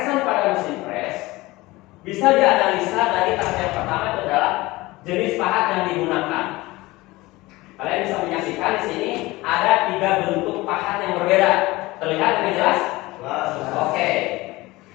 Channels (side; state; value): right; quieter; 20.4 dB